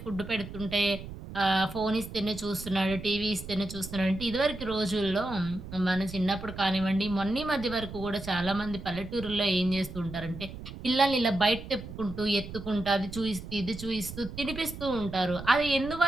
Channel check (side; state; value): right; noise; rumble, 12 dB below the sound